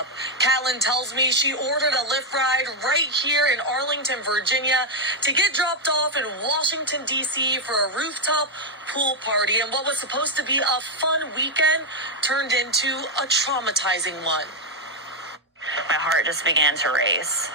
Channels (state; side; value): normal; both; correlation 0.01